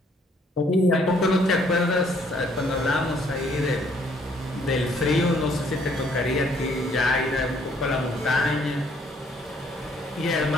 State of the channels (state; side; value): normal; both; correlation 0.65